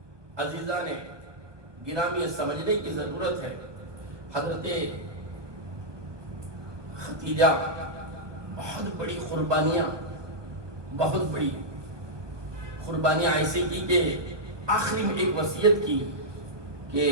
عزیزان گرامی، سمجھنے کی ضرورت ہے، حضرت خدیجہ بہت بڑی قربانیاں، بہت بڑی قربانیاں ایسے کی کہ آخری میں ایک وصیت کی کہ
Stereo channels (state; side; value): late; left; 1.2 ms